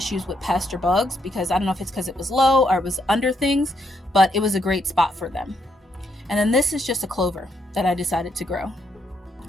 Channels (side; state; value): both; normal; correlation 0.77